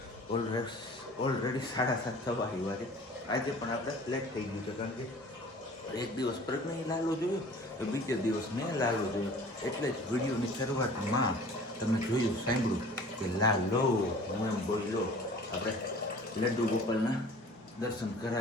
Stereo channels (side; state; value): both; normal; correlation 0.46